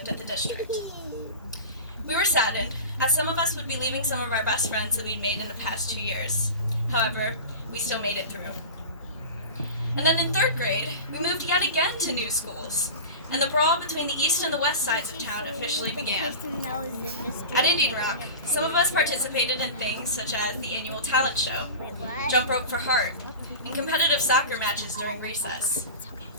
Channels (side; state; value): both; inverted; correlation -0.31